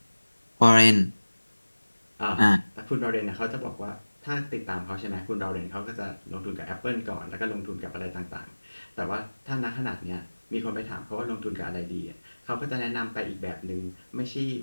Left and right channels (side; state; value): both; inverted; correlation -1.00